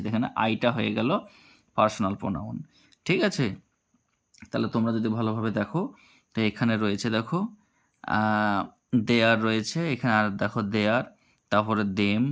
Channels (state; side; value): identical; both; correlation 1.00